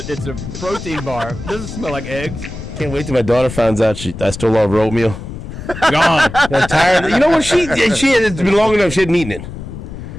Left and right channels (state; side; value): noise; left; rumble, 10 dB below the sound